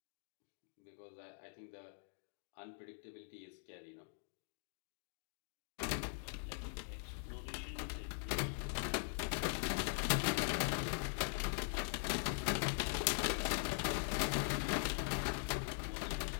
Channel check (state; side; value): silent; right; digital silence